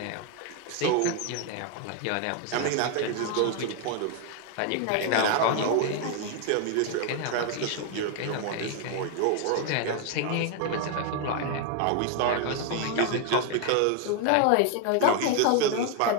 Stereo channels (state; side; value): different; both; correlation 0.01